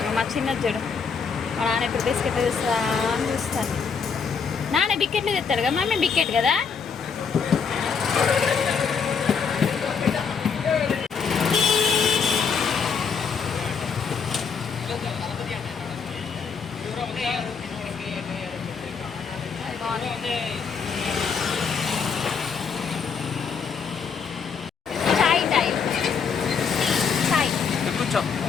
మా చిన్న చూడు, మా నాన్న ఎప్పుడు బిస్కెట్ తెస్తా అని చూస్తాను. నాన్న బికెట్లు తెస్తాడు కదా, మమ్మీ బికెట్ కదా. చాయ్ టైం, చాయ్. కూర్చో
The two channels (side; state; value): right; quieter; 6.0 dB